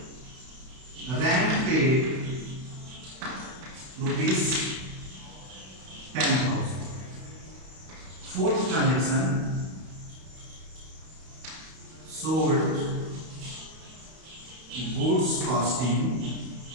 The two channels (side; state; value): left; late; 32 ms